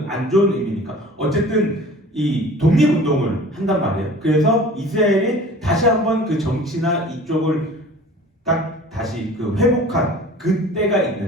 안 좋은 의미니까. 어쨌든 이 독립운동을 한단 말이에요. 그래서 이스라엘이 다시 한번 그 정치나 이쪽을 딱 다시 그 회복한 그때가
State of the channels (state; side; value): normal; both; correlation 0.44